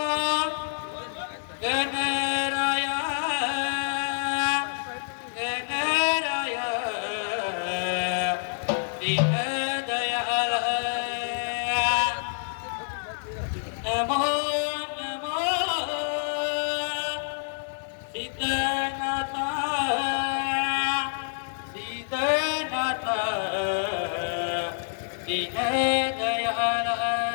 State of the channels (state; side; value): silent; right; digital silence